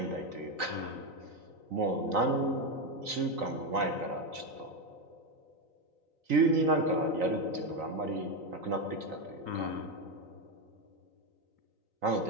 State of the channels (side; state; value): left; late; 3.9 ms